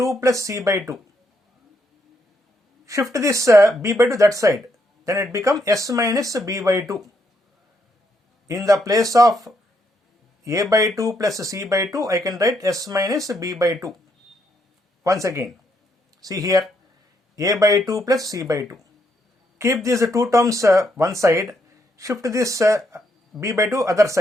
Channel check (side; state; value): both; normal; correlation 0.76